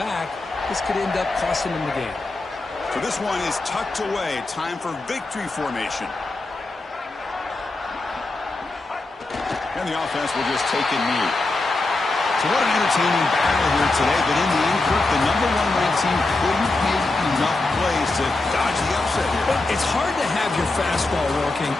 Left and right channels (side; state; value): right; quieter; 3.1 dB